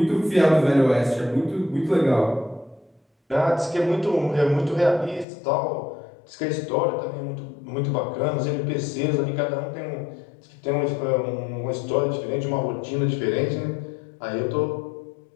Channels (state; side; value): drops out; right; at 5.2 s